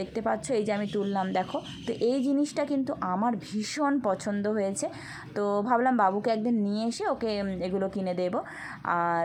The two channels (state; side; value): identical; both; correlation 1.00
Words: দেখতে পাচ্ছ, এই যে আমি তুললাম দেখো। তো এই জিনিসটা কিন্তু আমার ভীষণ পছন্দ হয়েছে, তো ভাবলাম বাবুকে একদিন নিয়ে এসে ওকে এগুলো কিনে দেবো। আর